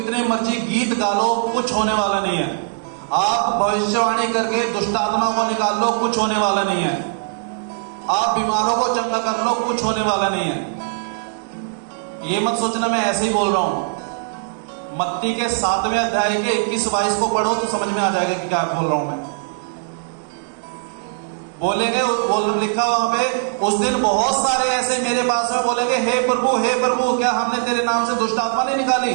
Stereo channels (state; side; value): silent; left; digital silence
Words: मर्जी गीत गा लो, कुछ होने वाला नहीं है। आप भविष्यवाणी करके दुष्टात्मा को निकाल लो, कुछ होने वाला नहीं है। आप बीमारों को चंगा कर लो, कुछ होने वाला नहीं है। ये मत सोचना मैं ऐसे ही बोल रहा हूं। मत्ती के 7वें अध्याय के 21-22 को पढ़ो तो समझ में आ जाएगा कि क्या बोल रहा हूं मैं। बोलेंगे, लिखा वहां पे, उस दिन बहुत सारे ऐसे मेरे पास में बोलेंगे, हे प्रभु क्या हमने तेरे नाम से दुष्टात्मा नहीं निकाली?